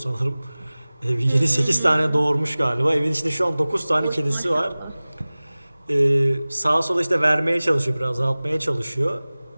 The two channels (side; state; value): both; inverted; correlation -0.99